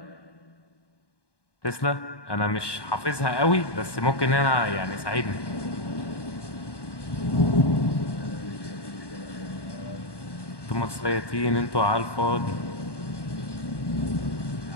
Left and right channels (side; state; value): right; late; 1.2 ms